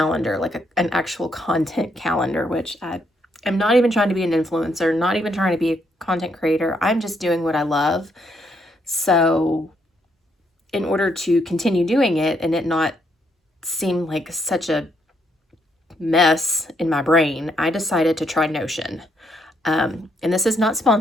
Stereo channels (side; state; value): both; normal; correlation 0.74